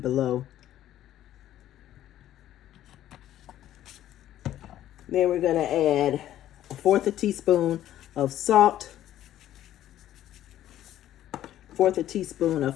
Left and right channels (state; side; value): quieter; right; 12.5 dB